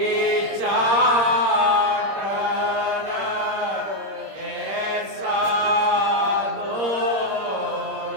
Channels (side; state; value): left; late; 26 ms